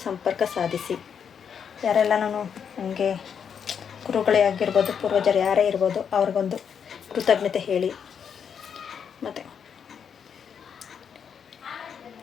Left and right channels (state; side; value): quieter; right; 7.3 dB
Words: ಸಂಪರ್ಕ ಸಾಧಿಸಿ. ಯಾರೆಲ್ಲ ನನಗೆ ಗುರುಗಳೇ ಆಗಿರ್ಬೋದು, ಪೂರ್ವಜರು ಯಾರೇ ಇರ್ಬೋದು, ಅವ್ರಿಗೊಂದು ಕೃತಜ್ಞತೆ ಹೇಳಿ. ಮತ್ತು